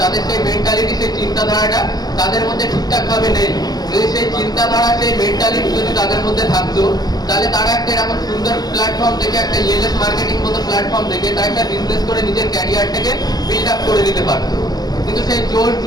তাদের সেই মেন্টালিটি, সেই চিন্তাধারাটা তাদের মধ্যে ঠিকঠাক ভাবে নেই। যদি সেই চিন্তাধারা, সেই মেন্টালিটি যদি তাদের মধ্যে থাকতো, তাহলে তারা একটা এরকম সুন্দর প্ল্যাটফর্ম থেকে, একটা ইএলএস মার্কেটিং মতো প্ল্যাটফর্ম থেকে তারা একটা বিজনেস করে নিজের ক্যারিয়ারটাকে বিল্ড আপ করে দিতে পারতো। কিন্তু সেই জোর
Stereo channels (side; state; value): right; late; 0.19 ms